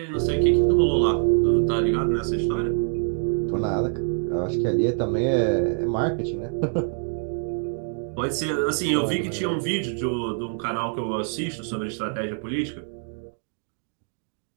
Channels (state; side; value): silent; left; 57 dB below the other